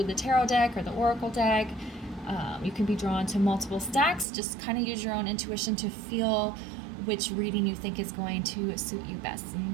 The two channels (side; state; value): left; drops out; at 4.2 s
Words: the tarot deck or the oracle deck. You can be drawn to multiple stacks. Just kind of use your own intuition to feel which reading you think is going to suit you best.